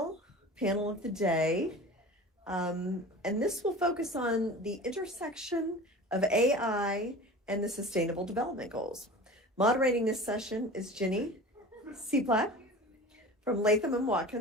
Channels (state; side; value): normal; both; correlation 0.37